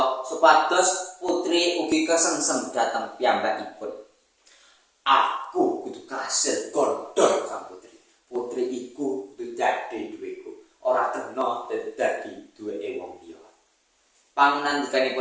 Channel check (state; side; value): identical; both; correlation 1.00